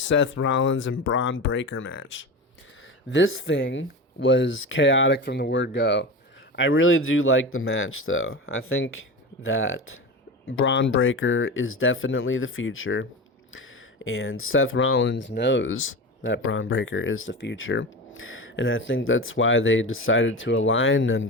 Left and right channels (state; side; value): normal; both; correlation 0.26